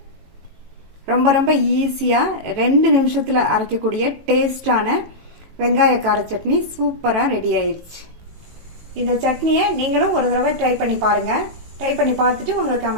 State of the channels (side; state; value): left; late; 18 ms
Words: ரொம்ப ஈஸியாக 2 நிமிஷத்தில் அரைக்கக்கூடிய டேஸ்டான வெங்காய கார சட்னி சூப்பராக ரெடி ஆயிடுச்சு. இந்த சட்னியை நீங்களும் ஒரு தடவை ட்ரை பண்ணி பாருங்கள். ட்ரை பண்ணி பார்த்துட்டு உங்கள்